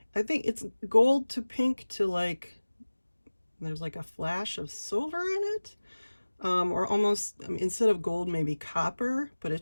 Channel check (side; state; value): both; inverted; correlation -1.00